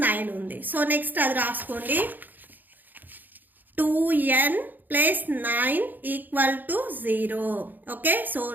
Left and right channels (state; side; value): late; left; 0.087 ms